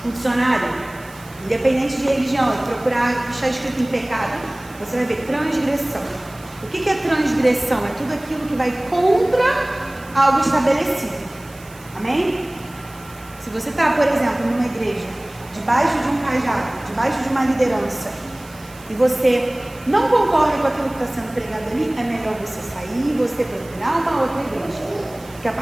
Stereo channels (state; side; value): noise; right; hiss, 22 dB below the sound